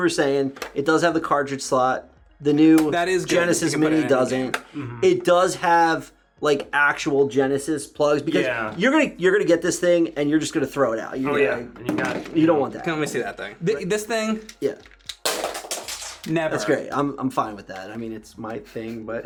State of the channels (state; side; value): identical; both; correlation 1.00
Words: saying, it does have the cartridge slot. The new Genesis Mini doesn't. It does have like actual Genesis plugs because you're gonna get this thing and you're just gonna throw it out. And you don't want that. Can we see that thing? This thing? Yeah. Never. That's great. I'm fine with that. I mean, it's my thing,